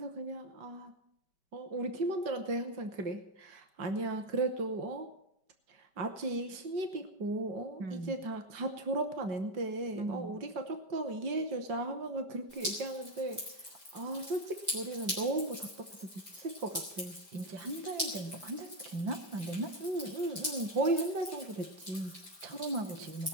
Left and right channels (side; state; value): left; late; 5.1 ms